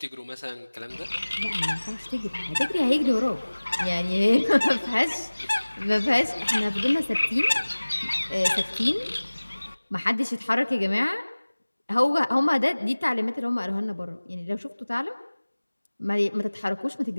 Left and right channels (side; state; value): both; inverted; correlation -1.00